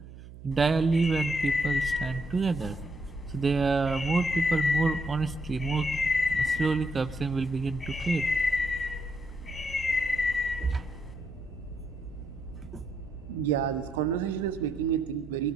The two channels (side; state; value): right; noise; hum, 16 dB below the sound